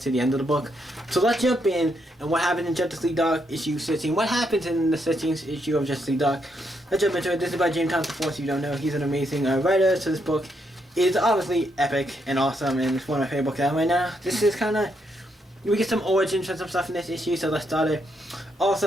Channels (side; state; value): both; normal; correlation 0.77